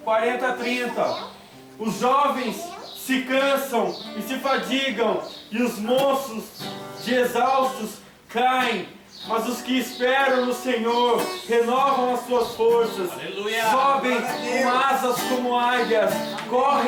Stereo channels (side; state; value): both; identical; correlation 1.00